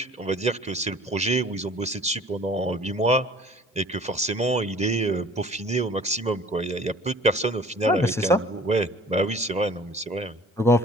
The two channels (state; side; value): normal; both; correlation 0.49